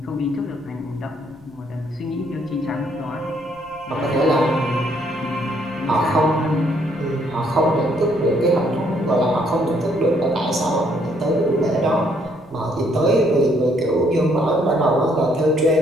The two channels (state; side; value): noise; left; rumble, 27 dB below the sound